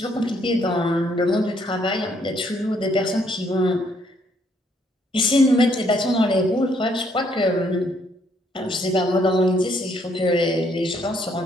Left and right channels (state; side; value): normal; both; correlation 0.69